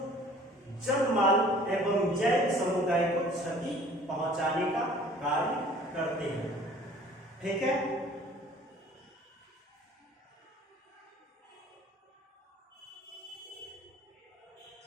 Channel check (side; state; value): both; normal; correlation 0.51